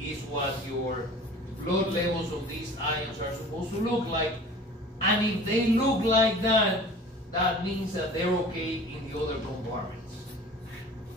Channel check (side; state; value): both; normal; correlation 0.43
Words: what your blood levels of these ions are supposed to look like. And if they look like that, that means that they're okay in the other compartments.